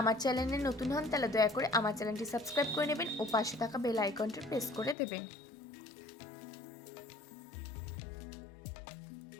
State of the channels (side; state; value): right; drops out; at 5.0 s